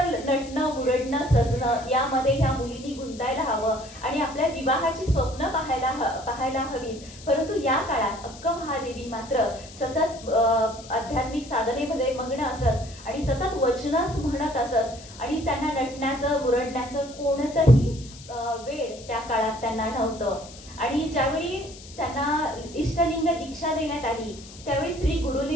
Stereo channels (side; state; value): left; noise; hiss, 18 dB below the sound